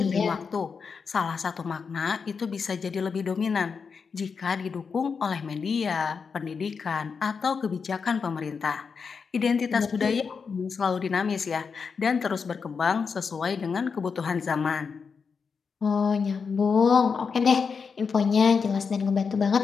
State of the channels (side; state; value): right; quieter; 5.6 dB